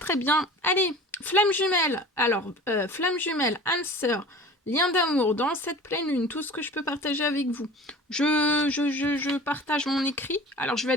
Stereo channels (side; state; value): both; normal; correlation 0.41